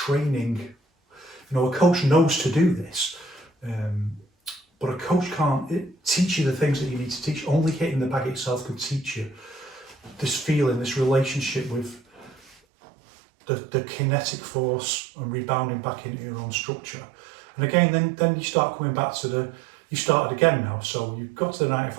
A coach knows to do this, but a coach can't teach you the things that you need to teach. Only hitting the bag itself can teach you this feeling, this relationship with the kinetic force and rebounding back into your own structure. And again, then you start coming back to you started again now. So you've got to the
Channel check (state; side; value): drops out; left; at 12.6 s